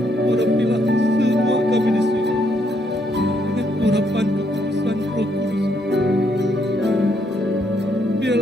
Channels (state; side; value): normal; both; correlation 0.73